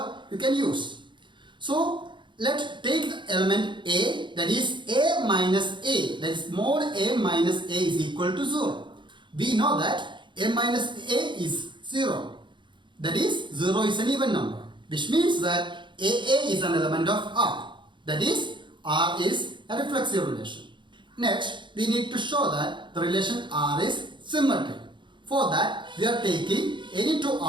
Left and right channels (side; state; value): left; late; 0.23 ms